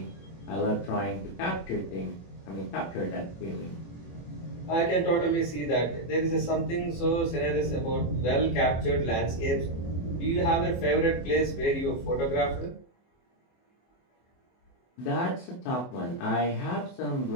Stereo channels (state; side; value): late; right; 24 ms